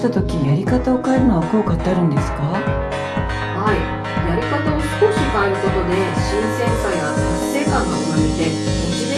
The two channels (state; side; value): identical; both; correlation 1.00